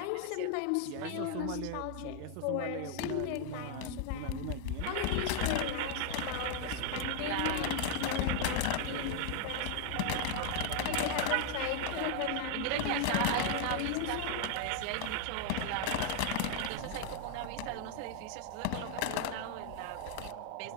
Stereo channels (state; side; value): different; both; correlation 0.00